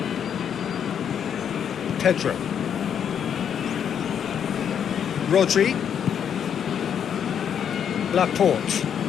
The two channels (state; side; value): quieter; right; 8.4 dB